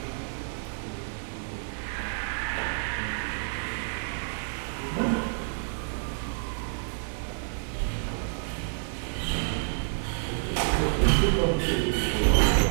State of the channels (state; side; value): silent; left; digital silence